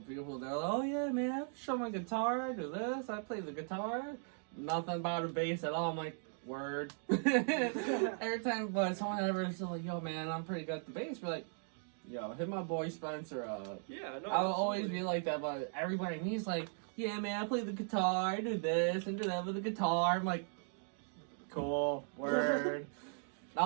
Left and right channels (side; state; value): left; silent; 52 dB below the other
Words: people. They're like, "Oh yeah, man, I show my guitar. I do this. I play the guitar. Nothing about a bass at all." I'm like, "Word." Every time, but someone ever is like, "Yo, man, I'm pretty good at the bass." We're like, "Yo, hit my boy Spencer up." Yeah, no. I'll always absolutely. be like that, but everybody to me is like, "Yeah, man, I play the guitar. I do this and do that with the guitar." I'm like, "Cool, word."